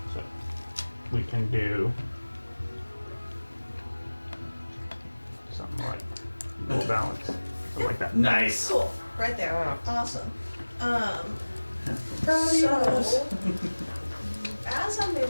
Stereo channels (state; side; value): inverted; both; correlation -1.00